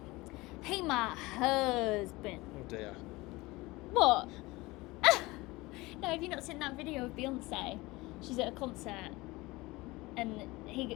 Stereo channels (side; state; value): right; quieter; 21.5 dB